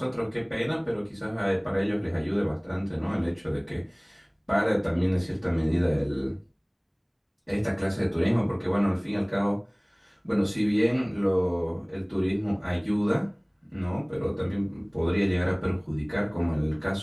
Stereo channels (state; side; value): identical; both; correlation 1.00